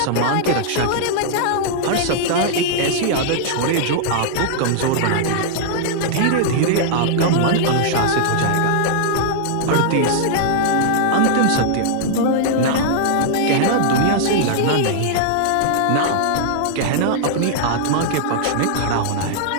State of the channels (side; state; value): both; different; correlation -0.01